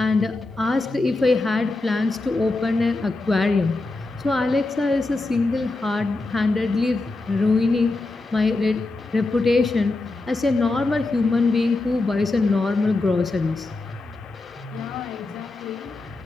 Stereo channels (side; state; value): right; quieter; 3.2 dB